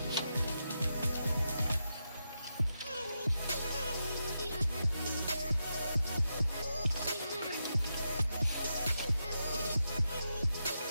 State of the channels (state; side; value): inverted; both; correlation -0.86